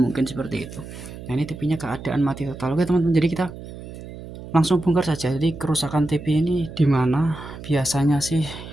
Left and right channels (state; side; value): noise; right; hum, 13 dB below the sound